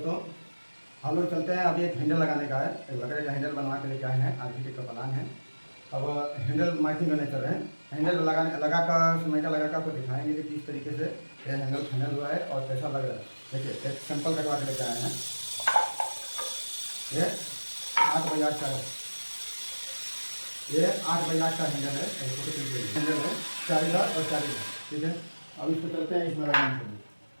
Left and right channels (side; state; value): both; inverted; correlation -1.00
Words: हम लोग चलते हैं। अभी एक हैंडल लगाने का है, एक लकड़ी का हैंडल बनवा के लेके आए हैं। आज का प्लान है। अब हैंडल मार्किंग करने चल रहे हैं। हैंडल लगा कर समय का लगा कर आपको दिखाएंगे कि किस तरीके से ये हैंडल फाइनल हुआ है और कैसा लग रहा है। देखिए, एक सैंपल कटवा के लेके आए हैं। ये 8 बाई 8 का है। ये 8 बाई 8 का हैंडल है। हैंडल है 4 और 4। ठीक है, अब इसको चलते हैं इसमें लगाने के लिए।